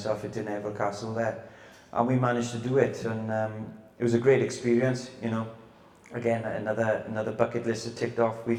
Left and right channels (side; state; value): both; identical; correlation 1.00